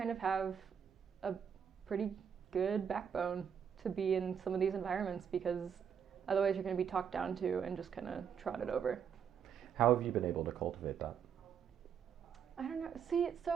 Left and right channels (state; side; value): quieter; left; 7.7 dB